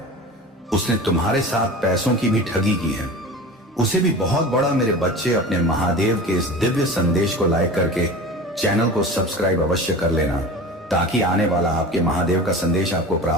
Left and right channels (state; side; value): normal; both; correlation 0.34